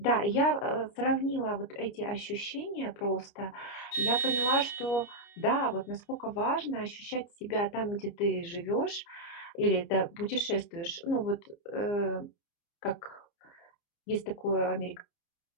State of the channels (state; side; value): late; right; 29 ms